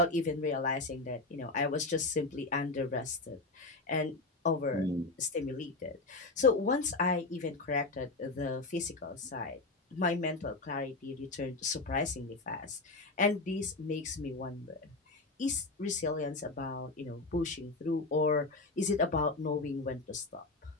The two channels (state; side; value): quieter; right; 3.3 dB